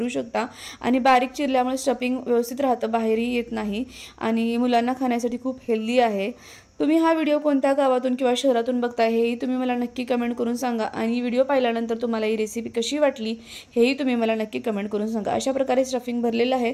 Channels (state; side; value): identical; both; correlation 1.00